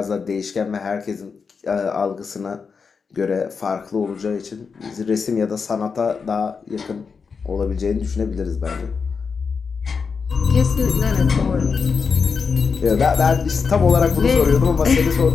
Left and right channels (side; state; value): right; quieter; 5.4 dB